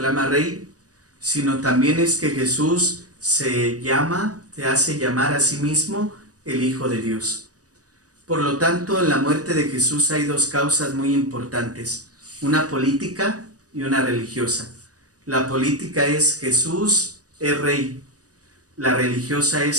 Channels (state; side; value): late; left; 0.67 ms